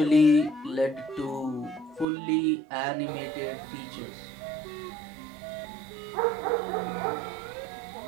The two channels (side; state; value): left; drops out; at 2.1 s